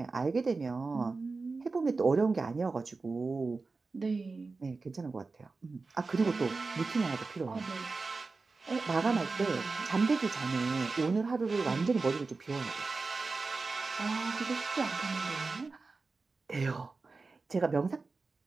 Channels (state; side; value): quieter; left; 4.0 dB